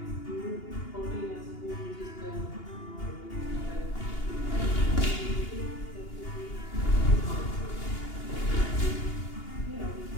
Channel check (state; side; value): late; right; 2.8 ms